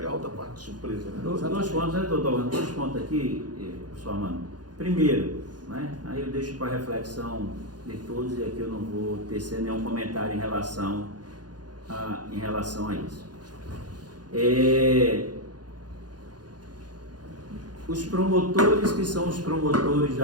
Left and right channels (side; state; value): left; late; 0.69 ms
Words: a outra parte de surpresa, né? Dois pontos, né, doutor? Dois pontos aqui, professor Armando. Primeiro, né, aí eu deixo para reflexão de todos e aqui eu não vou tecer nenhum comentário em relação a isso. Os promotores que são os promotores